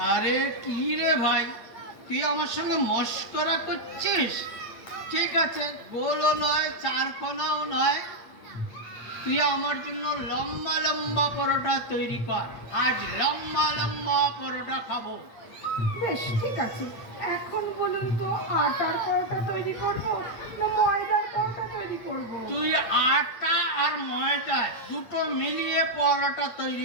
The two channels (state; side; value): late; right; 8.7 ms